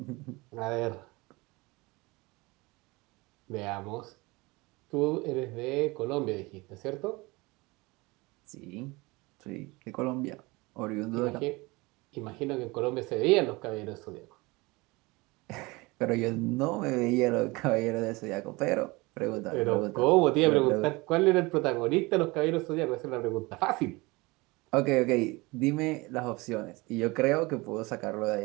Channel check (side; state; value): left; quieter; 23.8 dB